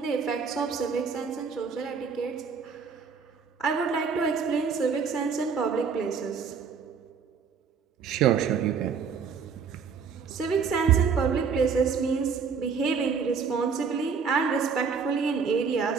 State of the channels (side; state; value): left; quieter; 5.9 dB